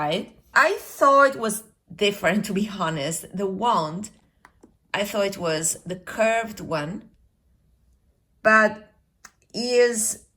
I thought it was different, to be honest. The wand, I thought it was the curved one, but is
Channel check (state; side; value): identical; both; correlation 1.00